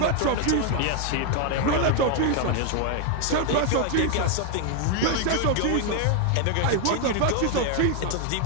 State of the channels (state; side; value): different; both; correlation 0.00